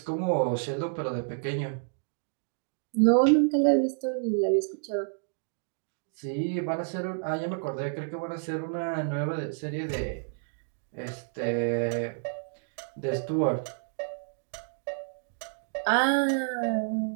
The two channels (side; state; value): left; silent; digital silence